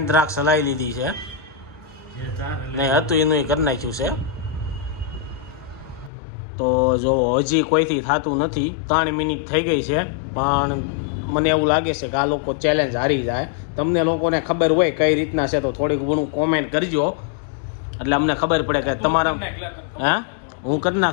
દ્રાક્ષ હલાવી લીધી છે એ 4 નહીં હતું એનું કરી નાખ્યું છે. તો જો હજી કોઈથી થતું નથી 3 મિનિટ થઈ ગઈ છે પણ મને એવું લાગે છે કે આ લોકો ચેલેન્જ હારી જાય. તમને લોકોને ખબર હોય કઈ રીતના છે તો થોડીક ઘણું કોમેન્ટ કરજો એટલે અમને ખબર પડે કે તમારા હે હું કરી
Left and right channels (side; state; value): right; drops out; at 6.1 s